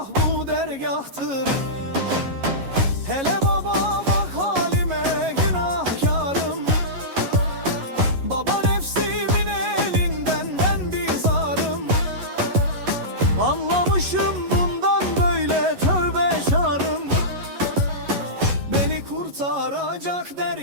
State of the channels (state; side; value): late; left; 11 ms